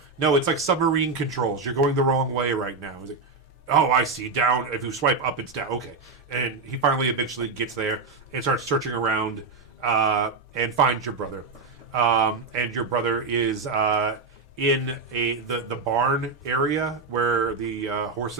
It's like submarine controls. You're going the wrong way right now. He's like, oh, I see. Down. If you swipe up, it's down. Okay. And he finally eventually gets there and starts searching around and finds your brother. And your brother is in the barn area where the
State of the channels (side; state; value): left; quieter; 4.3 dB